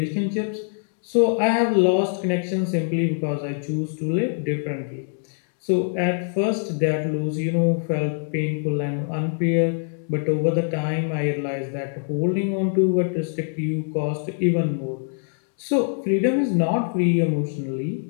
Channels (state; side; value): silent; right; 63 dB below the other